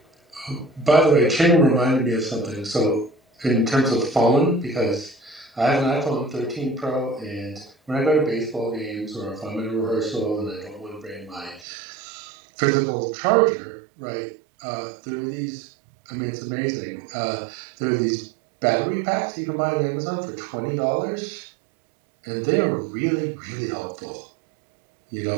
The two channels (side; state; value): left; drops out; at 11.7 s